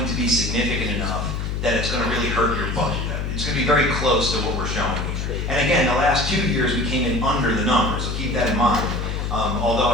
to be significant enough that it's going to really hurt your budget. It's going to be very close to what we're showing here. And again, the last 2 years we came in under the number, so keep that in mind. Although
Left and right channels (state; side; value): noise; left; hum, 2 dB below the sound